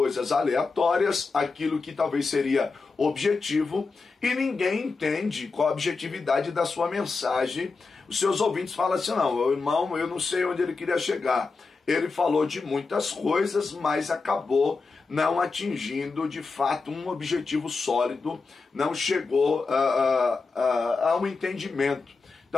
aleatórias, aquilo que talvez seria objetivo, e ninguém entende qual a objetividade da sua mensagem. Os seus ouvintes falam assim, não, irmão, eu não sei onde ele queria chegar. Ele falou de muitas coisas, mas acabou não atingindo de fato um objetivo sólido, não chegou a um entendimento.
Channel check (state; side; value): quieter; right; 4.3 dB